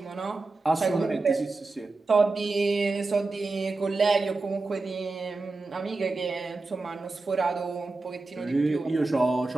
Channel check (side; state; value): left; quieter; 3.5 dB